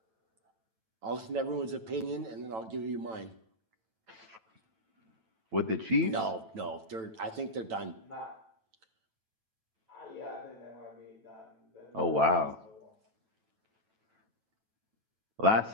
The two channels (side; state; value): left; late; 9.1 ms